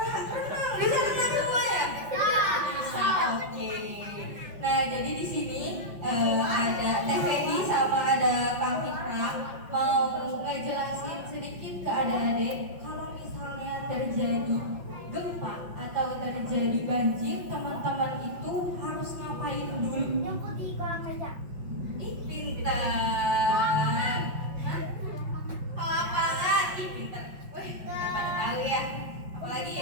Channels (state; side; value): late; left; 5.6 ms